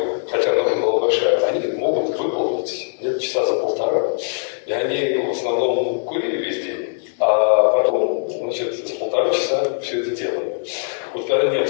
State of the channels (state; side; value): silent; right; 65 dB below the other